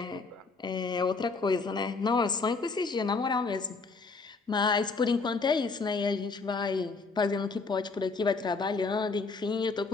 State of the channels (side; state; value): right; quieter; 4.2 dB